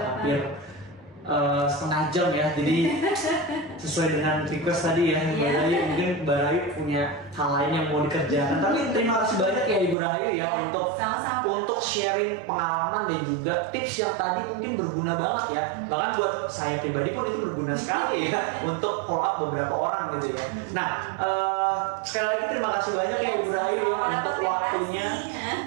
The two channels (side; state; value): left; drops out; at 10.0 s